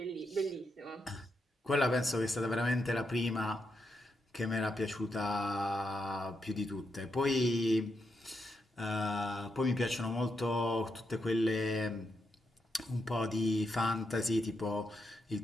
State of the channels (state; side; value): normal; both; correlation 0.82